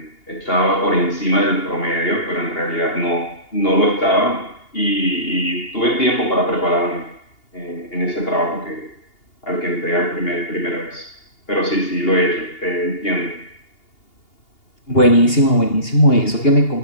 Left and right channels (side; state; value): right; late; 2.8 ms